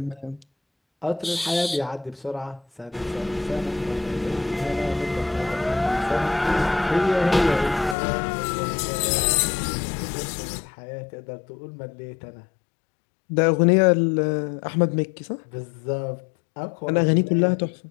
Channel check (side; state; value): right; drops out; at 8.0 s